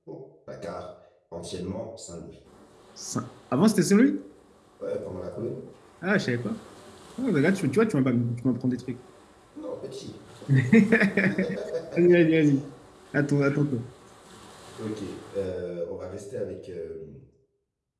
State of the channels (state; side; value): identical; both; correlation 1.00